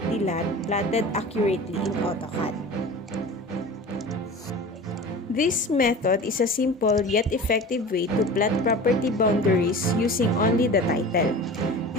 lot plotted accurately in AutoCAD. This method is a simple yet effective way to plot property boundaries using only the title,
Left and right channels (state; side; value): normal; both; correlation 0.36